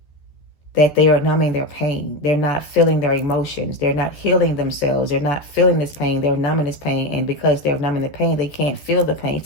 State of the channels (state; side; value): late; right; 13 ms